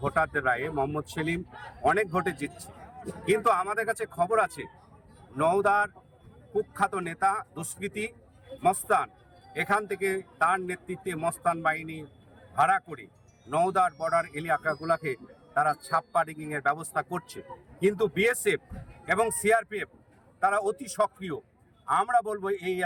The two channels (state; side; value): identical; both; correlation 1.00